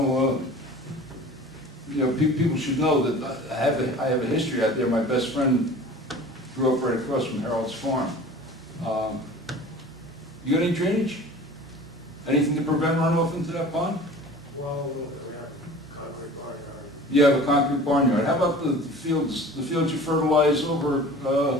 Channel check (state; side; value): normal; both; correlation 0.42